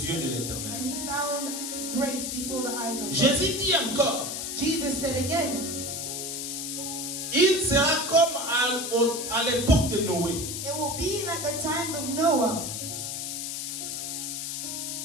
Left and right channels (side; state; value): left; noise; hiss, 4 dB below the sound